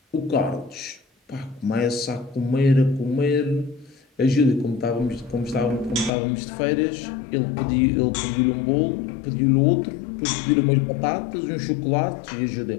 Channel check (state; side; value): drops out; right; at 6.1 s